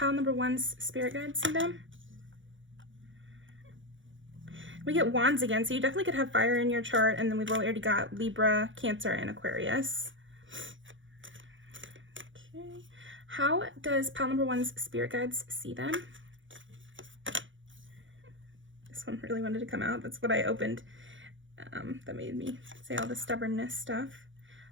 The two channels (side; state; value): left; late; 0.56 ms